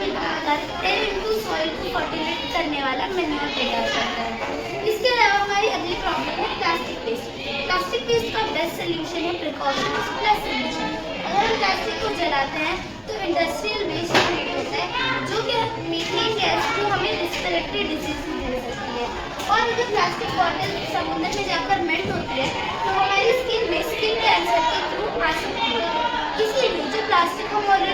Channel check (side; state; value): both; identical; correlation 1.00